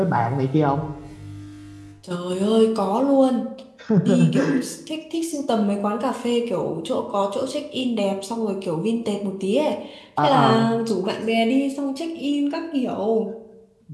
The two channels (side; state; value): both; identical; correlation 1.00